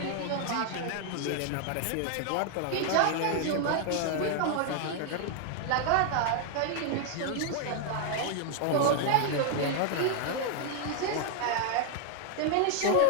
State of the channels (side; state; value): both; different; correlation 0.00